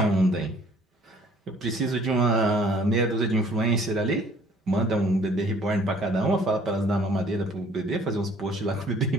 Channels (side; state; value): both; normal; correlation 0.57